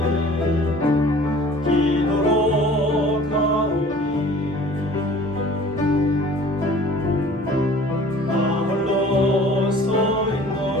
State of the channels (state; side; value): normal; both; correlation 0.48